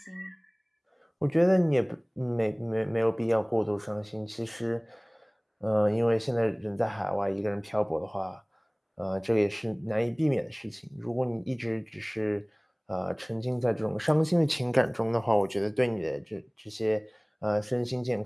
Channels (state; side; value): identical; both; correlation 1.00